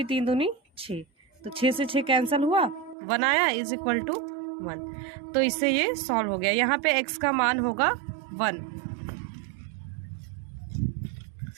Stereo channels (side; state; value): left; drops out; at 3.0 s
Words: 3 दूनी 6, तो 6 से 6 कैंसिल हुआ, 1 आया इज इक्वल टू 1। तो इससे ये सॉल्व हो गया। यहाँ पे x का मान होगा 1।